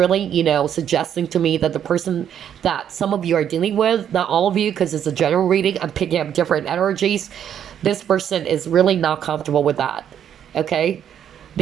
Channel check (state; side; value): quieter; left; 9.3 dB